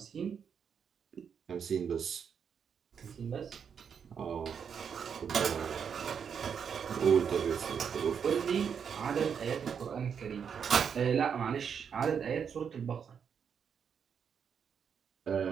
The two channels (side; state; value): left; quieter; 7.1 dB